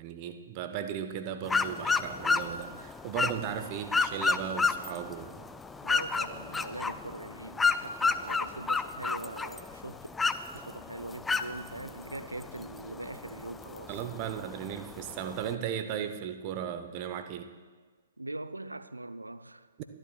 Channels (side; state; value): both; normal; correlation 0.51